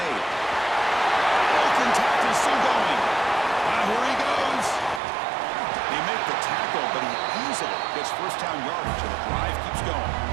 Broken tackle, still going. Here he goes. They make the tackle, but he easily gets first down yardage, and the drive keeps going.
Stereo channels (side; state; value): left; drops out; at 5.0 s